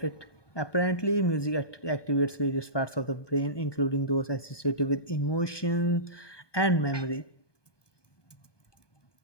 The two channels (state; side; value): late; right; 1.2 ms